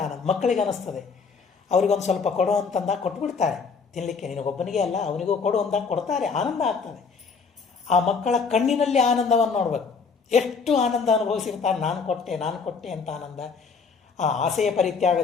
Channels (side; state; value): right; quieter; 5.3 dB